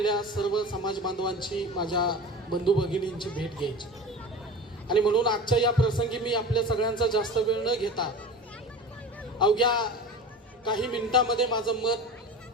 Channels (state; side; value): normal; both; correlation 0.34